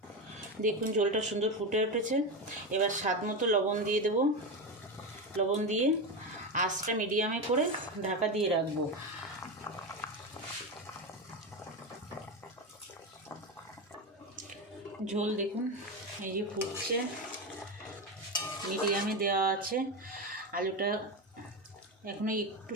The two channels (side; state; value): both; normal; correlation 0.16